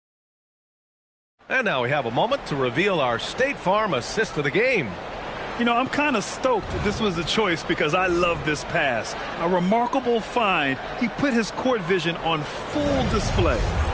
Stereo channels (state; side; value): identical; both; correlation 1.00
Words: And now we have a moment to reveal our State Farm assist of the game. You know, I'm kind of stoked that this was a choice because I love this pass. A remarkable find. He put his court vision on full display.